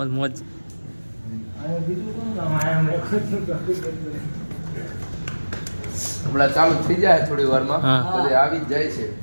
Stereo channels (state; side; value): inverted; both; correlation -1.00